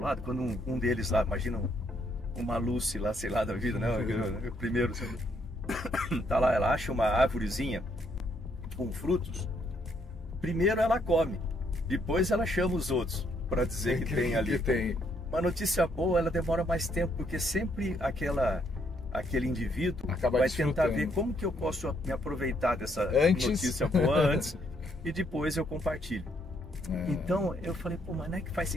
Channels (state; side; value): normal; both; correlation 0.71